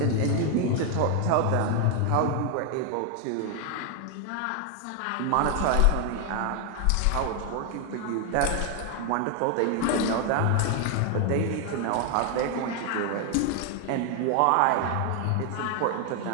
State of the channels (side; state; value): both; different; correlation 0.00